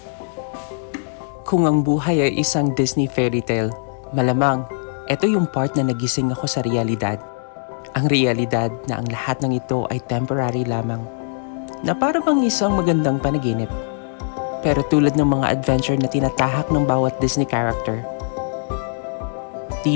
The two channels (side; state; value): right; silent; digital silence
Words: Kung ang buhay ay isang Disney fairy tale, malamang ito yung part na nagising ako sa realidad. Ang realidad na ang lahat ng ito ay temporary lamang, na para bang isang magandang panaginip. Pero tulad ng mga adventure na tinatahak ng bawat Disney character,